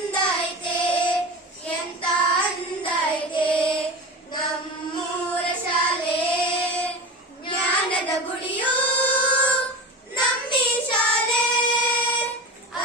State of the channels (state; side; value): normal; both; correlation 0.29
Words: ಐತೆ ಎಂತ ಅಂದ ಐತೆ ನಮ್ಮೂರ ಶಾಲೆ ಜ್ಞಾನದ ಗುಡಿಯು ನಮ್ಮಿ ಶಾಲೆ